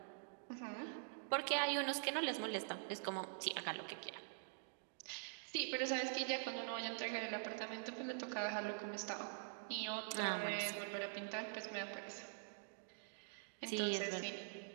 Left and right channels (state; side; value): silent; left; digital silence